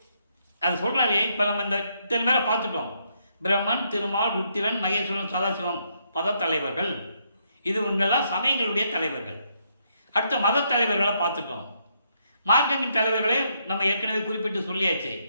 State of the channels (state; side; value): inverted; both; correlation -0.75